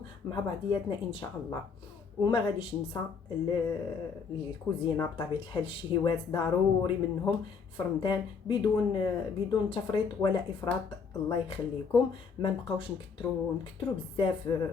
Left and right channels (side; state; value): right; quieter; 5.6 dB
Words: مع بعضياتنا ان شاء الله. وما غاديش ننسى الكوزينه بطبيعه الحال، الشهيوات ضروري منهم في رمضان بدون تفريط ولا افراط. الله يخليكم، ما نبقاوش نكثروا بزاف